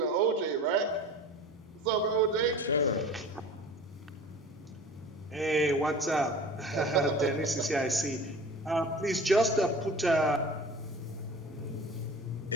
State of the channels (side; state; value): both; normal; correlation 0.39